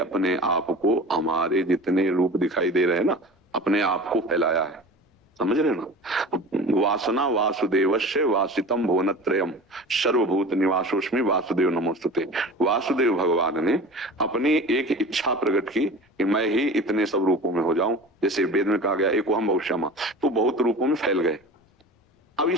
आप को हमारे जितने रूप दिखाई दे रहे हैं ना, अपने आप को फैलाया है। समझ रहे ना? वासना वासुदेवस्य वासितम भुवनत्रयम सर्वभूत निवासोस्मि वासुदेव नमोस्तुते। वासुदेव भगवान ने अपनी एक इच्छा प्रकट की कि मैं ही इतने सब रूपों में हो जाऊं। जैसे वेद में कहा गया एको हम बहुश्यामा, तो बहुत रूपों में फैल गए। अब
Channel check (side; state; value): both; normal; correlation 0.36